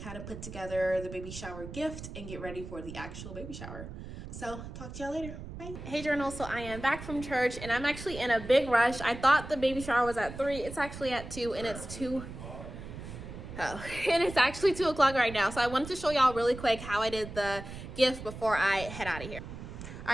of put together the baby shower gift and get ready for the actual baby shower. So talk to y'all later. Bye. Hey journal, so I am back from church and I'm actually in a big rush. I thought the baby shower was at 3. It's actually at 2 and it's 2. Oh, and it's actually 2 o'clock right now. So I wanted to show y'all really quick how I did the gift before I head out of here. All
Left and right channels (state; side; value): noise; right; rumble, 11 dB below the sound